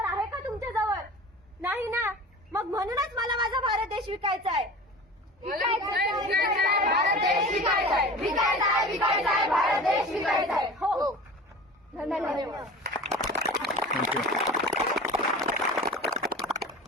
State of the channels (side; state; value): both; normal; correlation 0.37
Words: आहे का तुमच्या जवळ? नाही ना. मग म्हणूनच मला माझा भारत देश विकायचा आहे. भारत देश विकायचा आहे, विकायचा आहे, विकायचा आहे, भारत देश विकायचा आहे. हो, धन्यवाद.